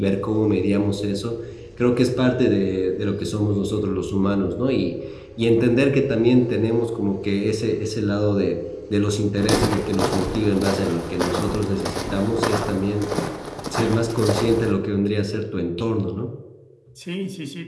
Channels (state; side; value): identical; both; correlation 1.00